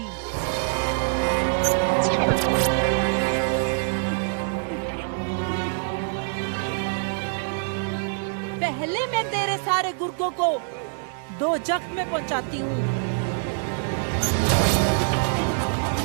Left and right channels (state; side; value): silent; left; 62 dB below the other